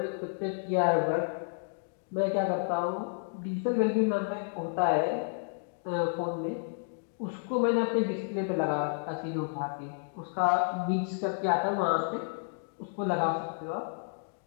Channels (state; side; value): silent; right; digital silence